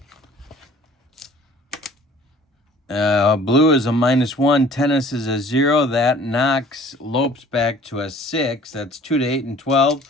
Blue is a -1. Tennis is a 0. That knocks Lopes back to a 6. That's 2 to 8 and 12.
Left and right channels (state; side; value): normal; both; correlation 0.51